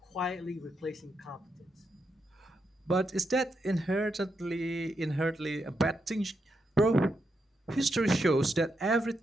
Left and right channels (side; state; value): both; normal; correlation 0.83